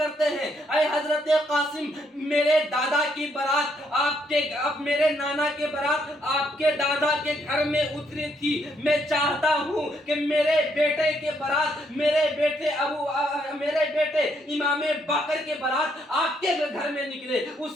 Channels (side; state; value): both; normal; correlation 0.73